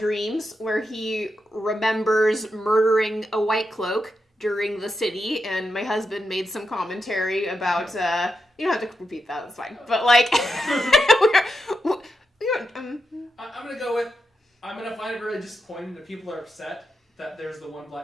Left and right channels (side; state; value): both; normal; correlation 0.86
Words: where he remembers murdering a White Cloak during the city, and my husband made some commentary about. You don't have to repeat that. It's fine. But like, I'm gonna go with. I'm gonna find it really disappointing that people are upset that there's the one